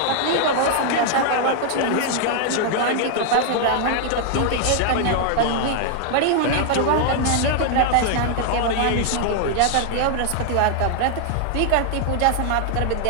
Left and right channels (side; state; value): both; different; correlation 0.00